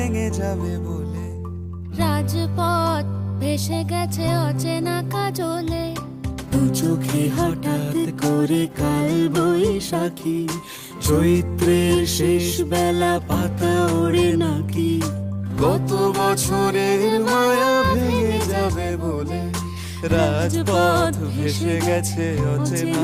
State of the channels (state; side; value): identical; both; correlation 1.00